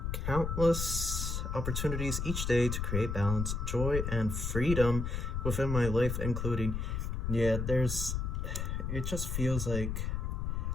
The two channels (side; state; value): left; noise; rumble, 2 dB below the sound